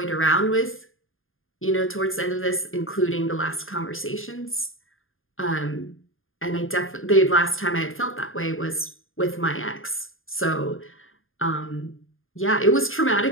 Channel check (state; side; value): late; right; 0.59 ms